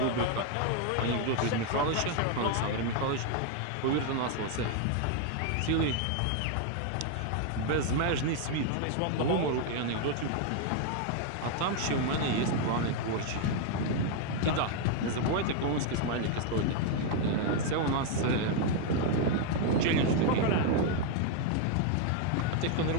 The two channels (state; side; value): different; both; correlation 0.00